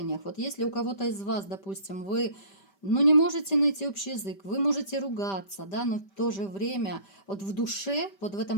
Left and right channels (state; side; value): late; right; 5.1 ms